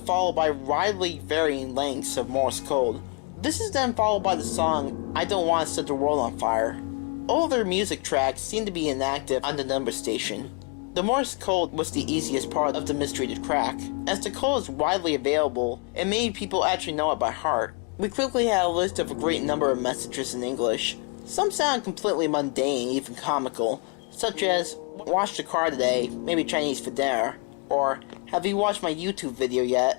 by widely varying lengths of Morse code. This is then followed by the song I Don't Want to Set the World on Fire. All their music tracks seem to be inactive on the number station. The Morse code was the easiest part of the mystery to crack, as the code is widely available and many people actually know it by heart. We quickly had a list of a great number of messages in English. Some sound completely mundane, even comical, such as, "Washed the car today, maybe Chinese for dinner," or, "Have you watched my YouTube video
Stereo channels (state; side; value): quieter; right; 31.7 dB